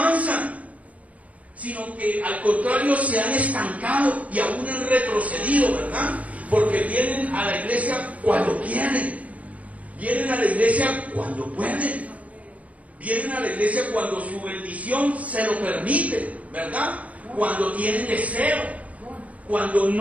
sino que al contrario se han estancado y aún han retrocedido, ¿verdad? Porque vienen a la iglesia cuando quieren, vienen a la iglesia cuando pueden, vienen a la iglesia cuando su bendición se lo permite, ¿verdad? Cuando tienen deseo, cuando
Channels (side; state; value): left; late; 0.068 ms